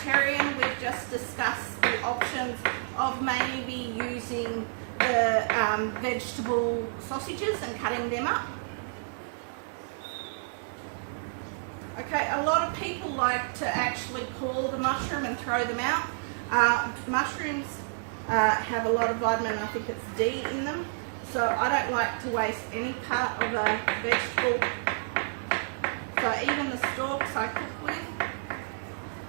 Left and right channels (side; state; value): left; silent; digital silence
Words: we've just discussed the options of maybe using the vegetable sausages and cutting them up. Okay, a lot of people like to actually core the mushroom and throw them out. Mushrooms have a lot of vitamin, I think it's D in them, so I don't like to waste any part of a vegetable. So even the stalks I cook with.